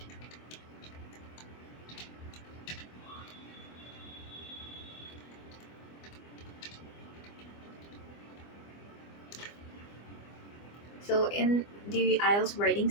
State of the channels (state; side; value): late; right; 24 ms